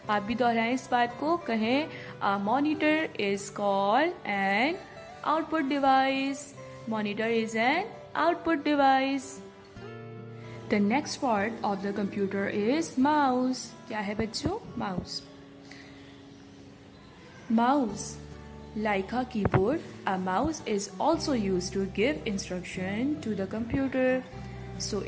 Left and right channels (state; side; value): identical; both; correlation 1.00